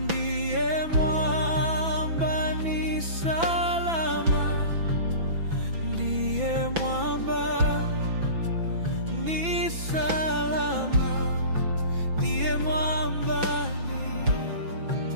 mwamba ni salama, ndiye mwamba ni salama, ndiye mwamba ni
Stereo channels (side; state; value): left; late; 6.0 ms